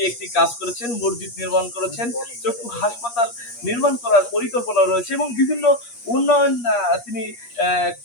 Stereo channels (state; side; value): late; right; 8.4 ms